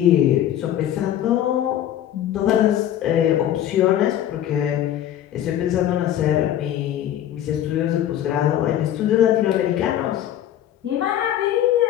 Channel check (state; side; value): quieter; right; 11.5 dB